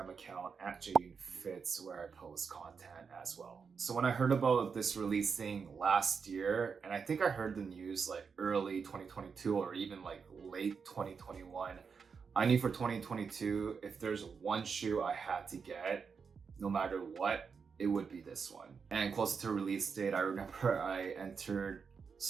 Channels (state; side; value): quieter; left; 5.8 dB